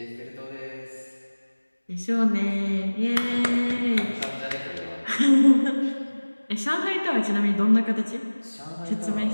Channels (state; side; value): inverted; both; correlation -1.00